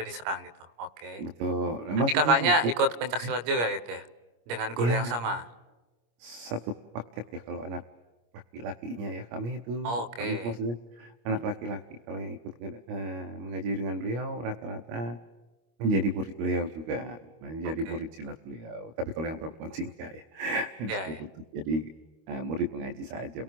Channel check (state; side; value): late; left; 25 ms